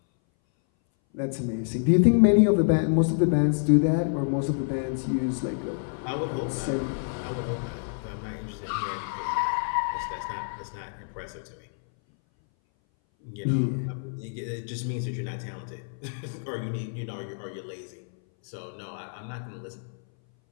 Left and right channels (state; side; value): silent; right; 59 dB below the other